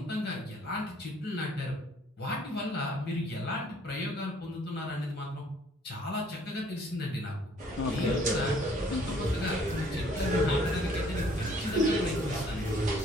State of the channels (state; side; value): normal; both; correlation 0.60